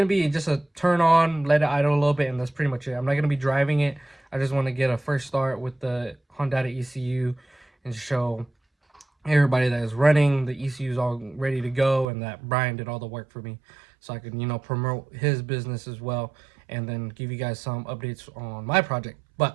be just a turn on, let it idle a little bit, and that's pretty much it. I'm not gonna be driving it. I just want to get a first start with the Honda ECU and show everybody that is running the ECU is all ready to go, and that Brian did all the work for me, so I can promote his business as well, and then give you guys some updates on my project.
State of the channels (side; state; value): left; drops out; at 12.1 s